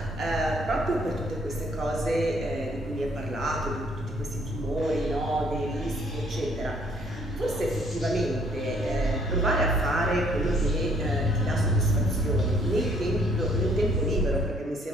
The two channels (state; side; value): normal; both; correlation 0.63